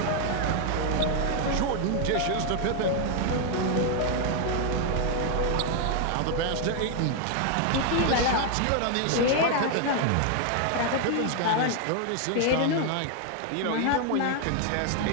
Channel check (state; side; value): different; both; correlation 0.00